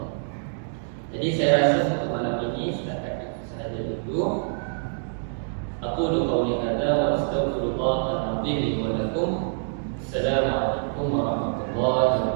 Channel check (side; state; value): left; silent; digital silence